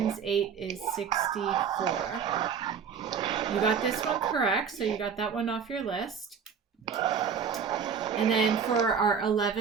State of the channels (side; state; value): left; quieter; 6.8 dB